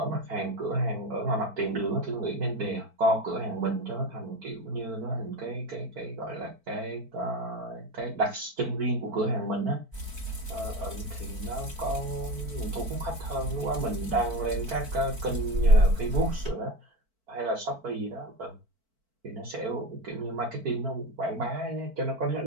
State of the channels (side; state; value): left; late; 4.5 ms